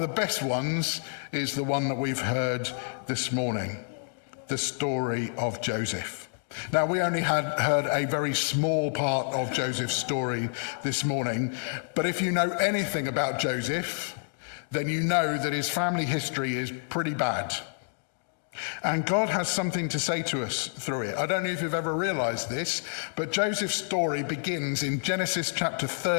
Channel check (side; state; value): right; silent; digital silence